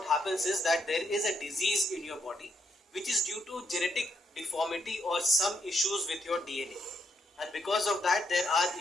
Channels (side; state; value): both; normal; correlation 0.77